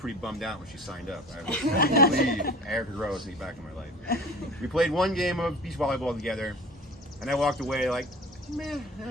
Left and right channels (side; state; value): both; normal; correlation 0.39